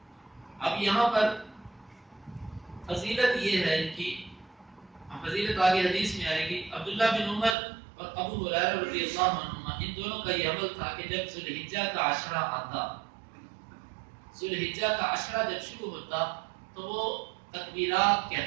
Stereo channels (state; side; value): drops out; left; at 7.6 s